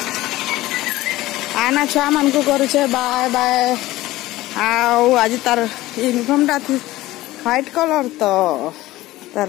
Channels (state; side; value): quieter; right; 17.3 dB